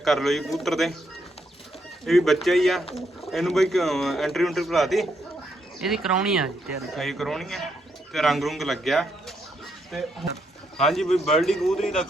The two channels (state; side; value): normal; both; correlation 0.77